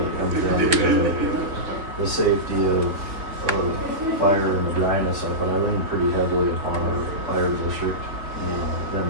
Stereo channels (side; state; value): left; late; 3.5 ms